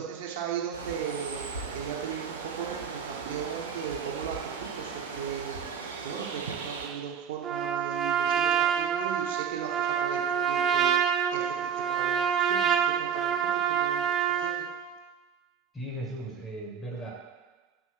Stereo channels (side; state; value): left; quieter; 7.6 dB